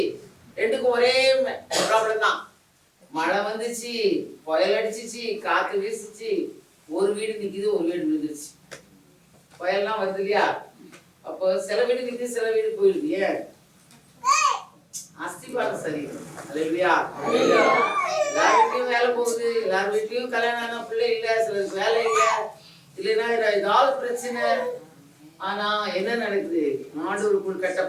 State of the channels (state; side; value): identical; both; correlation 1.00